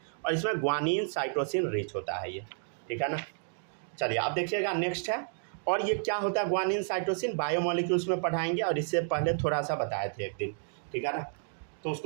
और इसमें ग्वानिन साइटोसिन रिच होता है ये, ठीक है ना। चलिए अब देखिएगा नेक्स्ट है, और ये क्या होता है ग्वानिन साइटोसिन? बायोमोलिक्यूल्स में पढ़ाएंगे, और इससे पहले थोड़ा सा बताए थे एक दिन, ठीक है ना, तो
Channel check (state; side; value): silent; left; digital silence